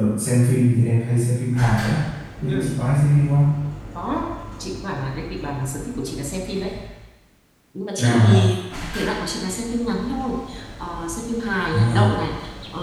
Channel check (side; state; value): both; identical; correlation 1.00